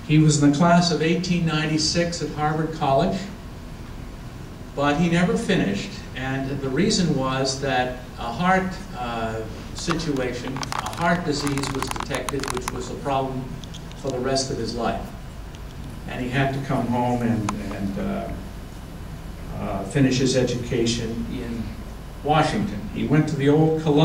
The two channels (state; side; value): identical; both; correlation 1.00